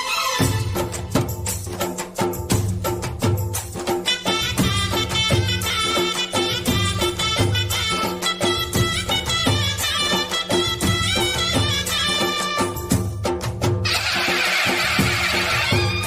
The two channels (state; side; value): identical; both; correlation 1.00